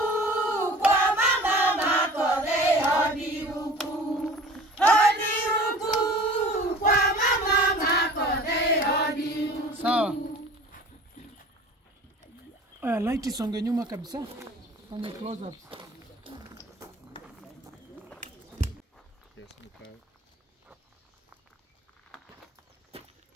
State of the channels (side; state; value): both; normal; correlation 0.44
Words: kwa mama makote, hodi huku. Hodi huku kwa mama makote, hodi huku. Sawa. Light isonge nyuma kabisa. Fanya close up.